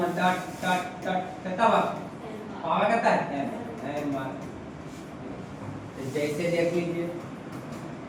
डॉट डॉट डॉट कितना पावर कितना है? m बार। जैसे देख लीजिए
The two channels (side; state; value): both; identical; correlation 1.00